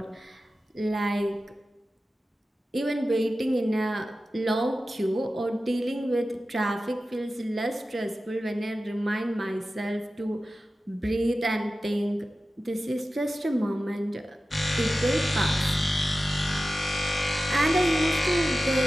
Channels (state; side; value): normal; both; correlation 0.94